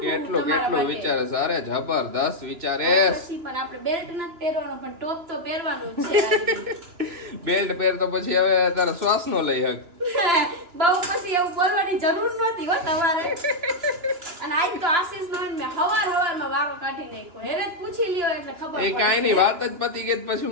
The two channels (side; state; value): left; late; 2.9 ms